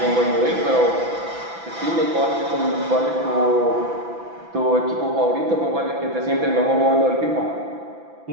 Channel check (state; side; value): late; left; 6.0 ms